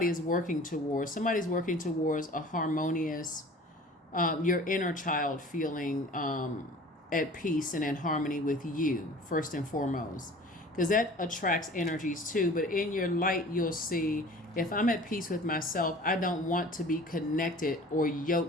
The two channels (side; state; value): both; normal; correlation 0.44